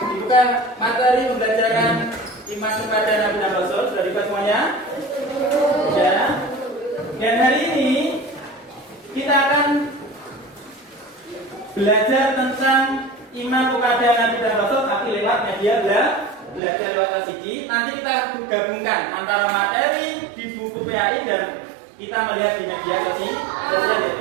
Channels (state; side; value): drops out; left; at 16.6 s